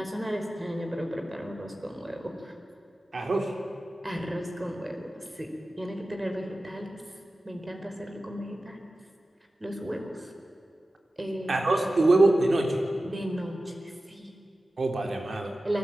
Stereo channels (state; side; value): normal; both; correlation 0.95